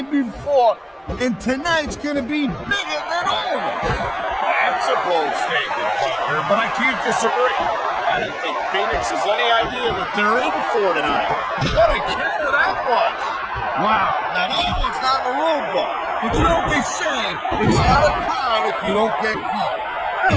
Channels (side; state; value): both; identical; correlation 1.00